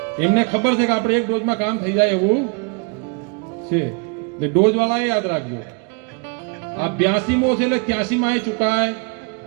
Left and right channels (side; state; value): left; quieter; 32.2 dB